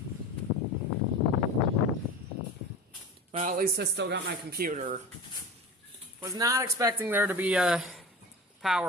Well, at least I still got my computer. Was not expecting there to be a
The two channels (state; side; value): normal; both; correlation 0.33